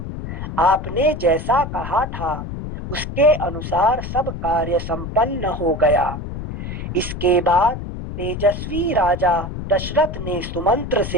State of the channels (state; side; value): noise; left; rumble, 7 dB below the sound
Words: आपने जैसा कहा था उसके अनुसार सब कार्य संपन्न हो गया। इसके बाद तेजस्वी राजा दशरथ ने सुमंत्र